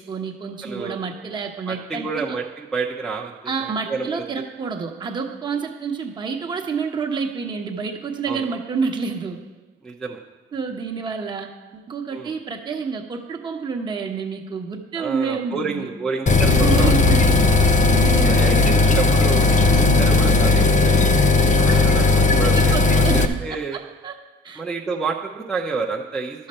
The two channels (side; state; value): both; normal; correlation 0.48